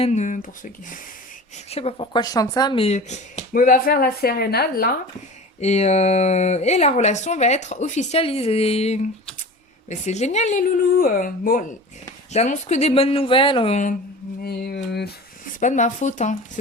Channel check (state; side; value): normal; both; correlation 0.36